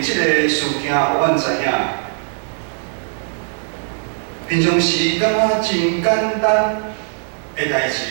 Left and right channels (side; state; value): left; silent; digital silence